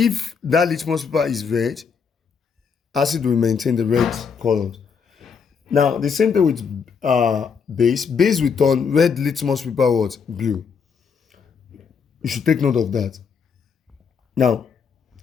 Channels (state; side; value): quieter; right; 6.1 dB